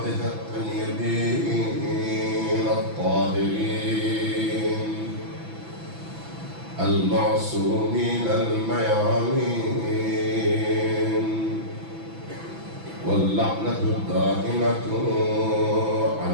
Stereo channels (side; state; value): left; late; 6.0 ms